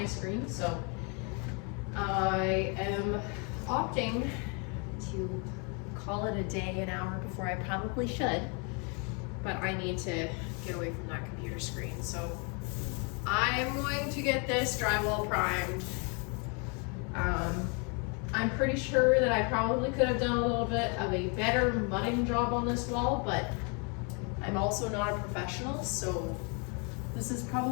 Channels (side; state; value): right; quieter; 34.9 dB